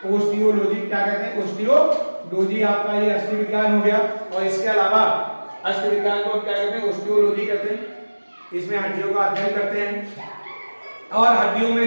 ऑस्टियोलॉजी। क्या कहते हैं? ऑस्टियोलॉजी आपका ये अस्थि विज्ञान हो गया। और इसके अलावा अस्थि विज्ञान को क्या कहते हैं? ऑस्टियोलॉजी कहते हैं। इसमें हड्डियों का अध्ययन करते हैं। और हड्डियों में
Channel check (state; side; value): inverted; both; correlation -1.00